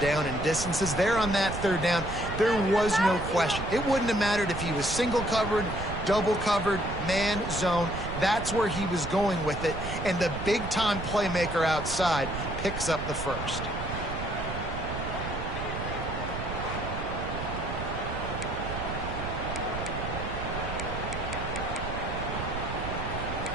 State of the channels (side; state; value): right; noise; rumble, 6 dB below the sound